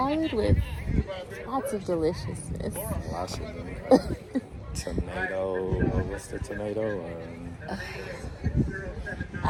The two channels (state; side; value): identical; both; correlation 1.00